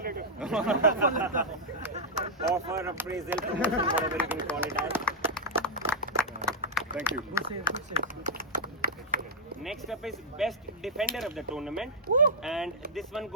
Offer, appraisal, promotion, whatever you can call it as. Thank you. Next up is best defender of the tournament, and this one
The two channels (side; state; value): both; normal; correlation -0.06